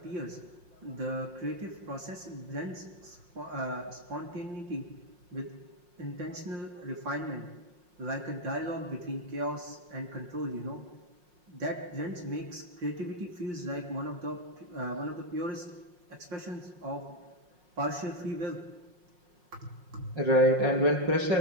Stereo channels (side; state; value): left; late; 5.6 ms